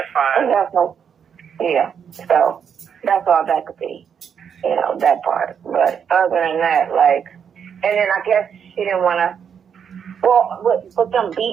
fine. That's no, yeah. So that's all that could be, you know, that part. But other than that, like, and then I guess she didn't want to, well, with them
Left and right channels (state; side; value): quieter; left; 7.5 dB